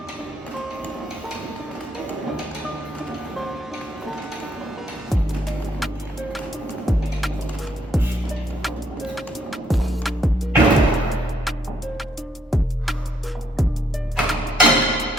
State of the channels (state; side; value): normal; both; correlation 0.71